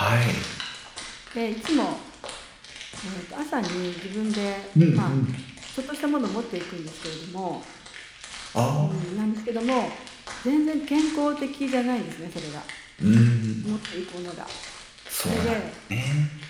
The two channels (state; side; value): identical; both; correlation 1.00